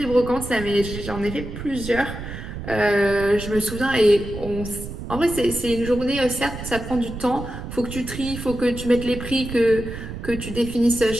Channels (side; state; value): right; noise; rumble, 9 dB below the sound